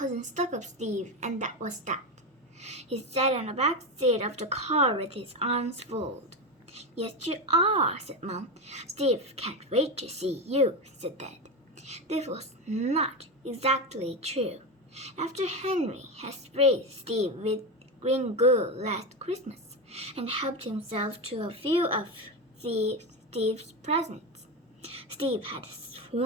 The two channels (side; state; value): both; normal; correlation 0.15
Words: Stuck-up Steve, and that was that. He sat on the back seat of the car with his arms folded. Yes, you are, said Mom. Steve can't wait to see you, said Dad. This was not exactly true. After Henry had sprayed Steve with green goo last Christmas and helped himself to a few of Steve's presents, Steve had